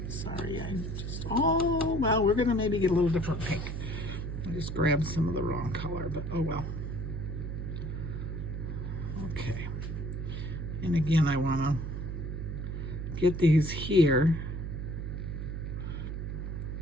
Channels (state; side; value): noise; right; hum, 4 dB below the sound